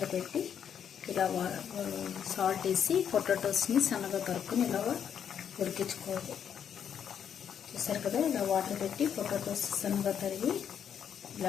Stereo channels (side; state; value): right; quieter; 8.4 dB